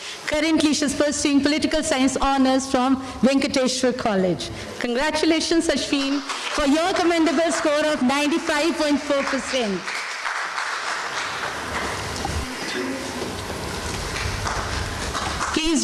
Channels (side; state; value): both; identical; correlation 1.00